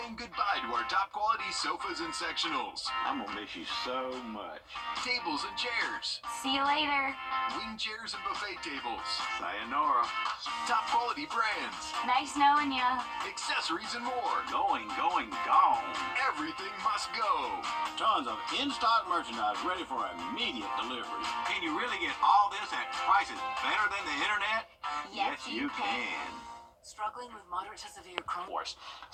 goodbye to our top quality sofas and sectionals. I'm gonna miss you so much. Tables and chairs. See you later. Wing chairs and buffet tables. Sayonara. Top quality brands. Nice knowing ya. Accessories and more. Gone. Everything must go. Tons of in-stock merchandise ready for immediate delivery. Can you really get all this at prices better than the internet? Yes, you can. Struggling with moderate to severe Crohn's. Force.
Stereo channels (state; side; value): identical; both; correlation 1.00